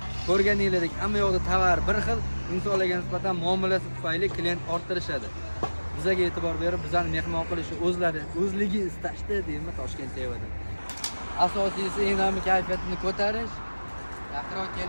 Ko'rganingizdek, hamma yoqda tovar bir xil, insonlarga nisbatan muomalasi tufayli klient orttirishadi. Bizga e'tibor berib, bizani mehmon qilishi o'zligi istashdi deymi Toshkent sevadi. Asosiysi eng kayfiyatini ko'tarish. Yaqinroq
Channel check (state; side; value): inverted; both; correlation -1.00